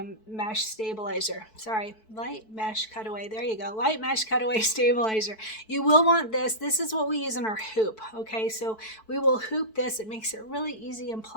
stabilizer. Sorry, light mesh cutaway. There you go. Light mesh cutaway stabilizer. You will want this. This is what we use in our hoop. Okay, so we will hoop this. It makes it really easy and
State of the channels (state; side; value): late; right; 4.6 ms